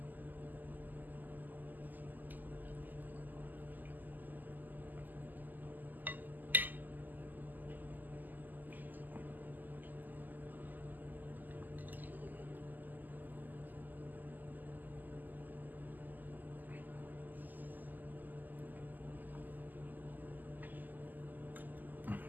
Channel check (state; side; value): late; left; 0.085 ms